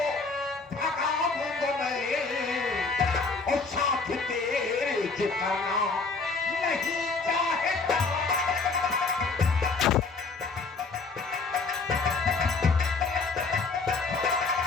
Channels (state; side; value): quieter; right; 4.2 dB